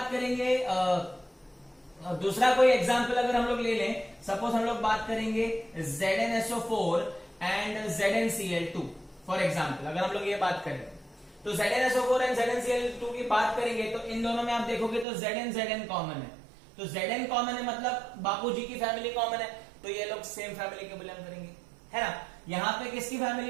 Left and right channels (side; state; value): left; drops out; at 15.1 s